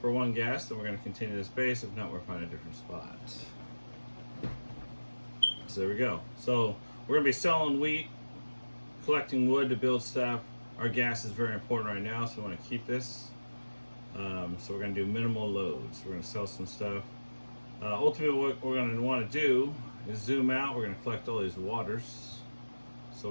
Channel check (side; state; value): both; inverted; correlation -1.00